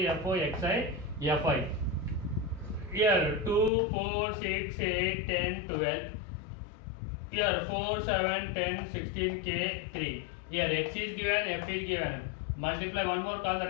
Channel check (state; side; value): drops out; right; at 3.7 s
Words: fo, xi, fi. Here 2, 4, 6, 8, 10, 12. Here 4, 7, 10, 16, k, 3. Here x is given, f is given. Multiply one more column,